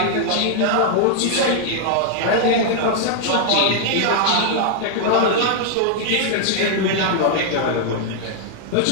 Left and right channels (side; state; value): both; different; correlation 0.00